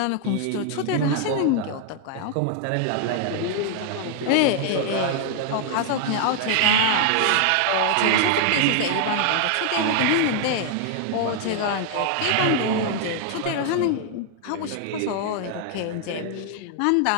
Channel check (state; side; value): different; both; correlation 0.00